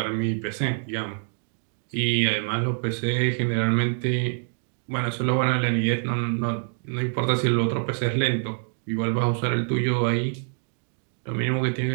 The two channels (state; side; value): silent; left; 61 dB below the other